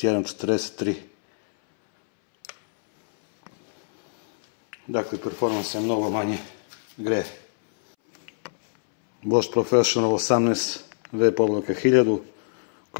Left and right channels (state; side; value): silent; right; 63 dB below the other